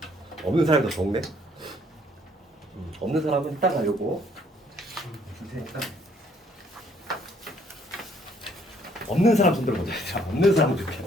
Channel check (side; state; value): both; normal; correlation 0.64